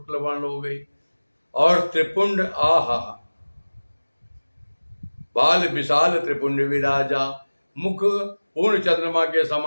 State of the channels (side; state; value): both; inverted; correlation -1.00